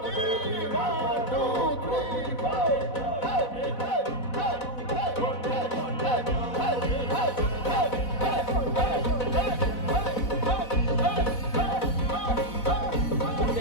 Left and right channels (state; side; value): late; right; 4.0 ms